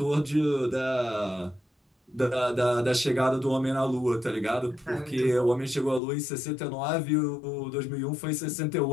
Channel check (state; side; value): drops out; right; at 6.0 s